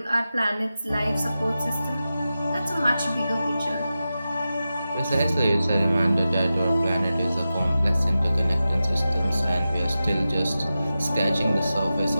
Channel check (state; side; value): inverted; both; correlation -0.93